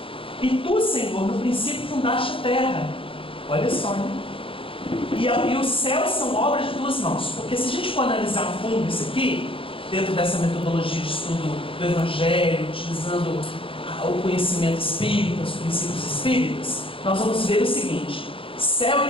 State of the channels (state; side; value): late; right; 0.26 ms